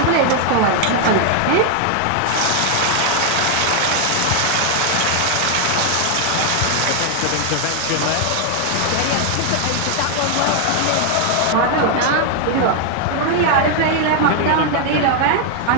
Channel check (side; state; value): both; different; correlation 0.00